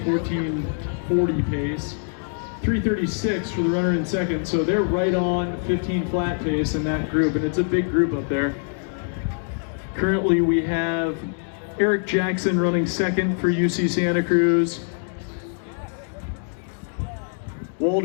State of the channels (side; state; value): right; silent; 63 dB below the other